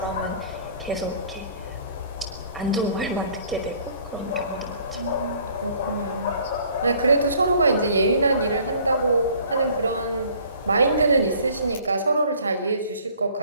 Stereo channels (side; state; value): both; inverted; correlation -0.55